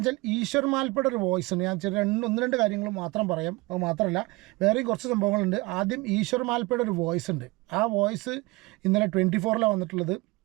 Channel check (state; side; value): quieter; left; 23.6 dB